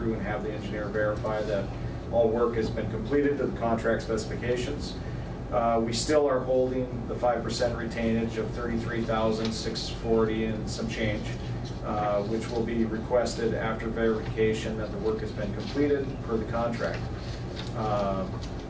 and have the engineer verify that all work has been completed to the contract specifications. We still are holding the 5% retainage of $33,640 and some change, which will be requested after verification that the work has been completed per the contract.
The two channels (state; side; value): identical; both; correlation 1.00